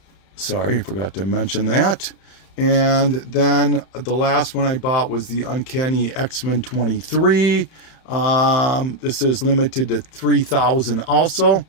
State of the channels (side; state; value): right; late; 31 ms